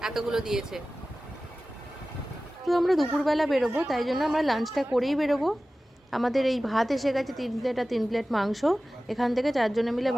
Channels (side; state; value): both; normal; correlation 0.96